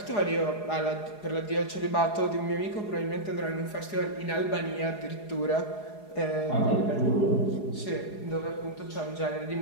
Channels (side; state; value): right; late; 4.8 ms